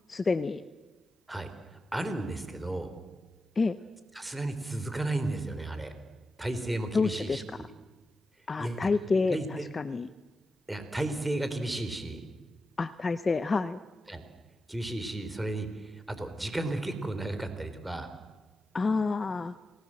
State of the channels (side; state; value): both; normal; correlation 0.90